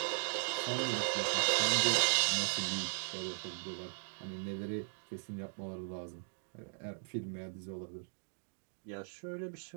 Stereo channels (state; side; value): silent; left; digital silence